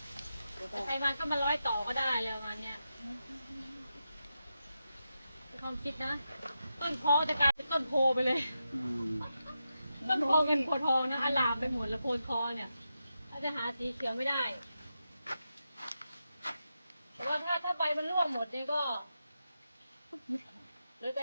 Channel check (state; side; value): inverted; both; correlation -0.88